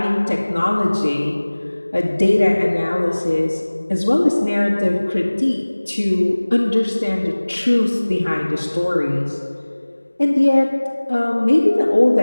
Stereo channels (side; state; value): both; inverted; correlation -1.00